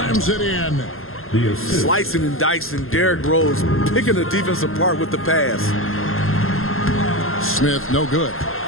it in. The assist. Slicing and dicing, Derrick Rose picking the defense apart with the pass. Smith, no good.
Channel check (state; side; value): late; right; 0.61 ms